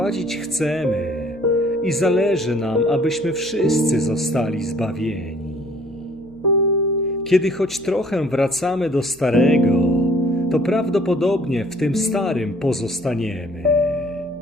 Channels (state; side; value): noise; right; hum, 24 dB below the sound